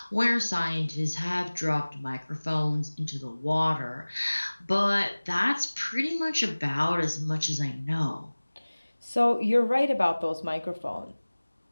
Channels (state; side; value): inverted; both; correlation -1.00